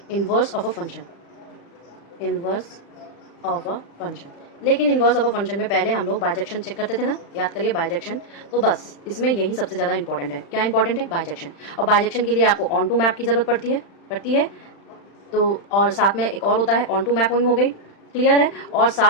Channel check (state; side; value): late; right; 36 ms